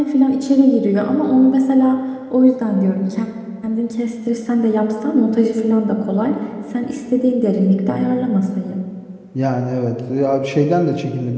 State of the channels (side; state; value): both; identical; correlation 1.00